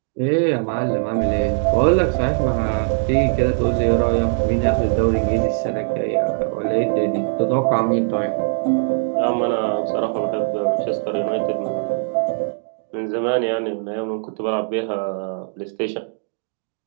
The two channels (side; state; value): left; silent; 65 dB below the other